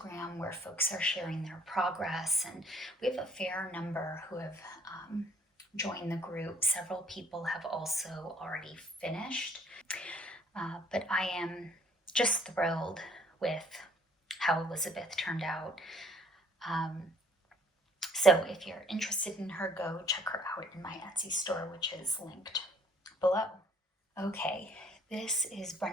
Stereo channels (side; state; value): both; normal; correlation 0.60